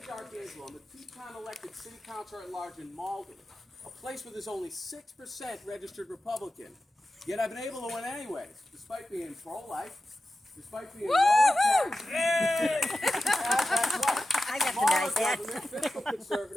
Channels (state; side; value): normal; both; correlation 0.93